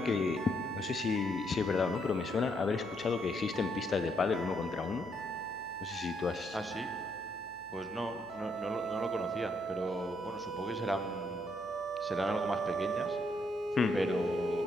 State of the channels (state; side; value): noise; left; hum, 26 dB below the sound